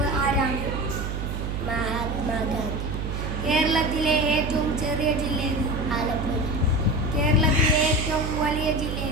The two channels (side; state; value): right; noise; hum, 4 dB below the sound